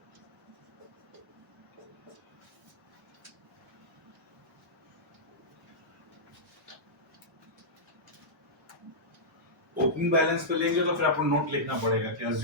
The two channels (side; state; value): both; normal; correlation -0.12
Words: ओपनिंग बैलेंस पे लेंगे तो फिर आपको नोट लिखना पड़ेगा कि